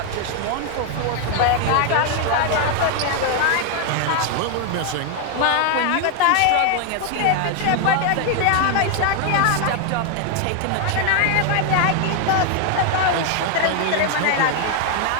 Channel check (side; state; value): both; different; correlation 0.01